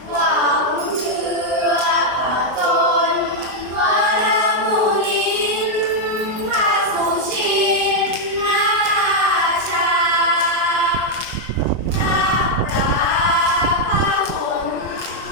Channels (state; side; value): late; left; 24 ms